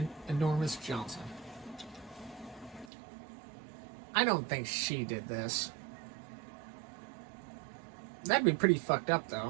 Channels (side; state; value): left; drops out; at 2.9 s